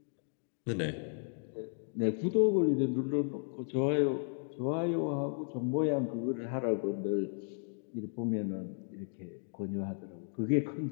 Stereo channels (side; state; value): right; silent; 55 dB below the other